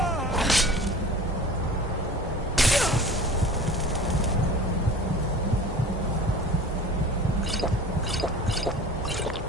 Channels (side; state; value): both; normal; correlation 0.40